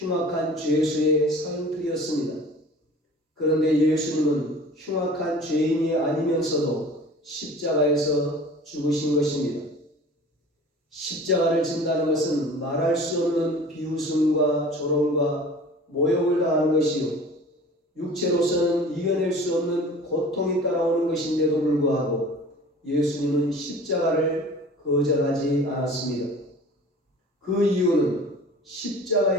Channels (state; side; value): normal; both; correlation 0.43